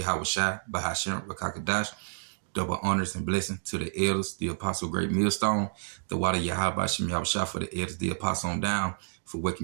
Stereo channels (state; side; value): silent; left; digital silence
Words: Shai, Bahashem, Rakakadash, double honors and blessings to the elders, the apostle great millstone, the water Yahweh, Bahashem, Yahweh Shai, for the elders, the apostle on down, for